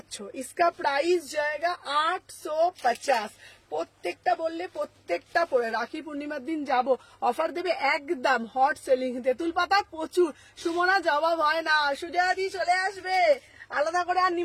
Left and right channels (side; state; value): both; identical; correlation 1.00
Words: ইসকা প্রাইস জায়গা 850। প্রত্যেকটা বললে প্রত্যেকটা পরে রাখি পূর্ণিমার দিন যাব, অফার দেবে একদম হট সেলিং। তেঁতুল পাতা প্রচুর, সুমনা জবাব হয় না। সুজয়াদি চলে আসবে, আলাদা করে আর